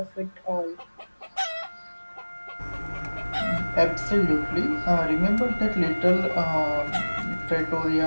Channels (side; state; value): both; inverted; correlation -1.00